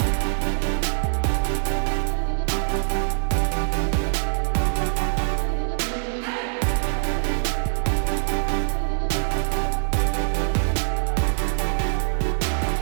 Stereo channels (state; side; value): silent; left; digital silence